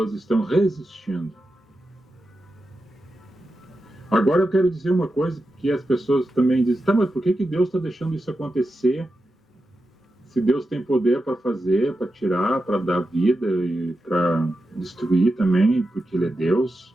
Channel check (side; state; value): both; normal; correlation 0.90